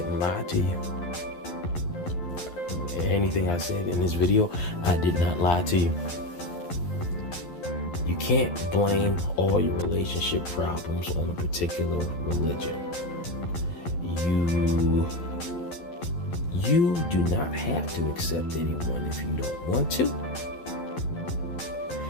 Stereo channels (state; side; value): late; right; 11 ms